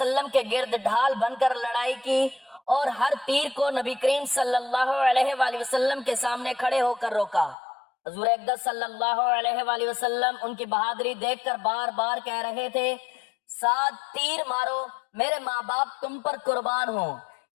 کے گرد ڈھال بن کر لڑائی کی اور ہر تیر کو نبی کریم صلی اللہ علیہ وآلہ وسلم کے سامنے کھڑے ہو کر روکا۔ حضور اقدس صلی اللہ علیہ وآلہ وسلم ان کی بہادری دیکھ کر بار بار کہہ رہے تھے سعد تیر مارو، میرے ماں باپ تم پر قربان ہوں۔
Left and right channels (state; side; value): drops out; right; at 7.6 s